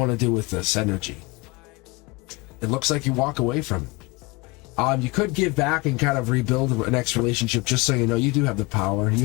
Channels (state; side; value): quieter; right; 25.1 dB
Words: to do with this energy? It looks like you walk away from it. You could give back and kind of rebuild a next relationship, just so you know you do have the power. You